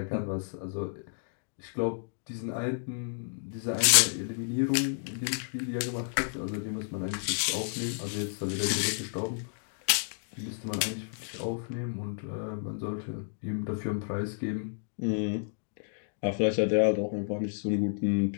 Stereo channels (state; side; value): silent; right; digital silence